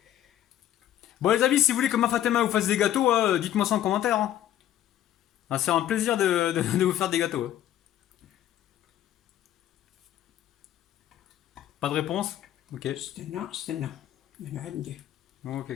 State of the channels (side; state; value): right; quieter; 12.0 dB